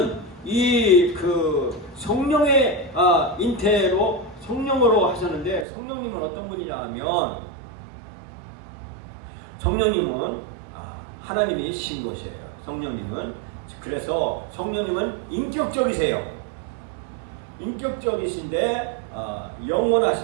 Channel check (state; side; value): drops out; left; at 5.7 s